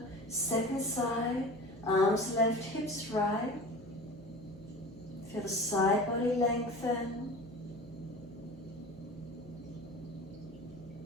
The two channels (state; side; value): noise; right; hum, 19 dB below the sound